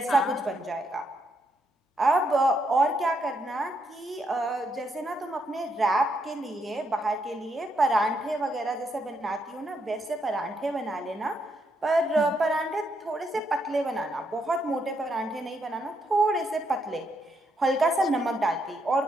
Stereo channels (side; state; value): both; normal; correlation 0.77